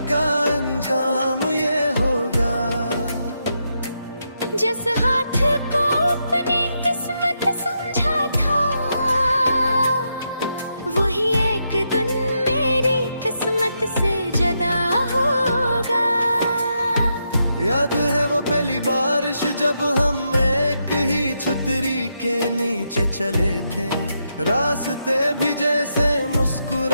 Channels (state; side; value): inverted; both; correlation -0.82